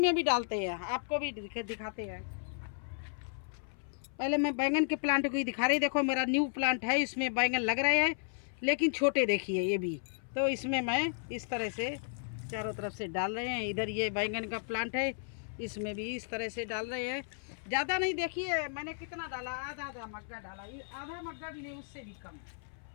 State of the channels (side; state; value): right; silent; 55 dB below the other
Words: भी डालते हैं, आपको भी दिखाते हैं। पहले मैं बैंगन के प्लांट को ही दिखा रही। देखो मेरा न्यू प्लांट है, इसमें बैंगन लग रहे हैं लेकिन छोटे, देखिए ये भी। तो इसमें मैं इस तरह से चारों तरफ से डाल रहे हैं। इधर ये बैंगन का प्लांट है, इसमें भी इस तरह से डाल रहे हैं। ज़्यादा नहीं, देखिए मैंने कितना डाला, आधा मग्गा डाला, आधा मग्गा भी नहीं, उससे भी कम।